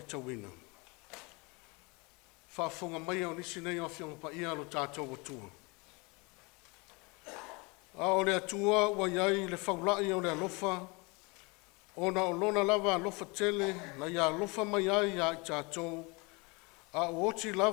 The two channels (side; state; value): right; quieter; 28.1 dB